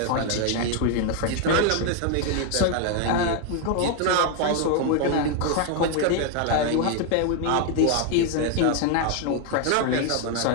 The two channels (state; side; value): different; both; correlation 0.01